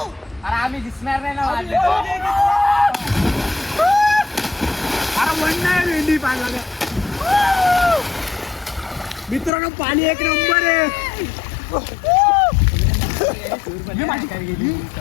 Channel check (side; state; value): right; drops out; at 9.5 s